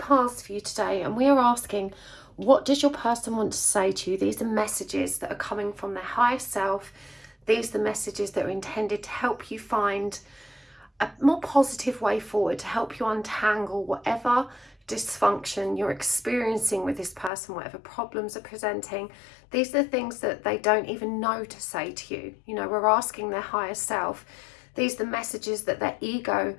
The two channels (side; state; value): right; drops out; at 17.3 s